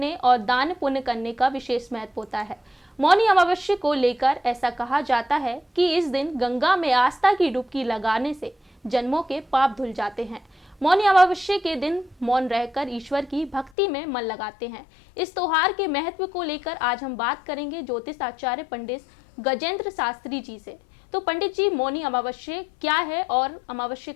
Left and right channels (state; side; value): drops out; right; at 13.7 s